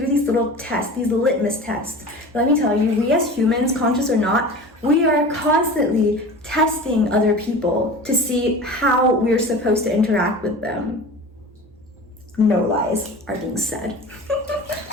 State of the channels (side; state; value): both; normal; correlation 0.36